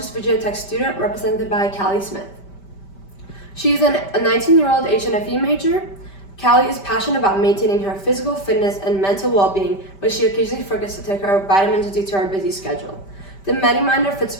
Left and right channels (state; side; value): late; right; 5.1 ms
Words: Virginia Tech student represented by Callie Smith. She is a 19-year-old HNFE major. Callie is passionate about maintaining her physical fitness and mental well-being, but she occasionally forgets to take her vitamins due to her busy schedule. The MetaMinder fits